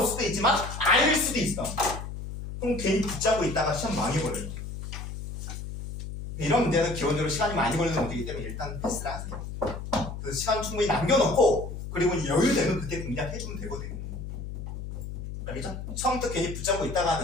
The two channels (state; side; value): noise; left; hum, 8 dB below the sound